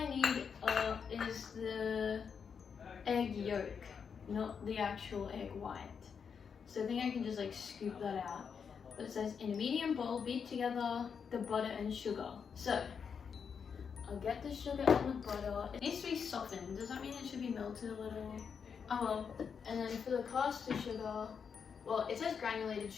need is the egg yolk, not the actual egg white. So I think I can just like scoop that out. But it says in a medium bowl, beat together the butter and sugar. So I'll get the sugar and the butter. It needs to be softened. Does that mean it should be melted a little? Oh well. And then for the caster sugar, well, it says granulated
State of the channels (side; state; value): right; quieter; 6.5 dB